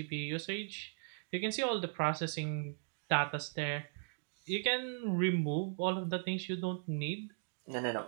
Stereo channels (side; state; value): left; silent; digital silence